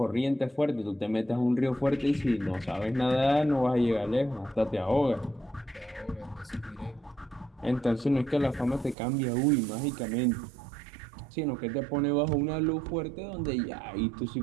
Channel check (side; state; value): left; drops out; at 9.0 s